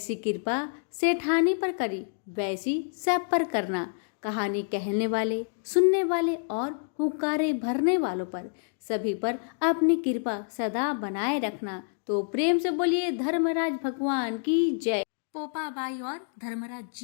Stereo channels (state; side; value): silent; right; digital silence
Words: कृपा सेठानी पर करी वैसी सब पर करना। कहानी कहने वाले, सुनने वाले और हुक्कारे भरने वालों पर सभी पर अपनी कृपा सदा बनाए रखना। तो प्रेम से बोलिए धर्मराज भगवान की जय। पोपा बाई और धर्मराज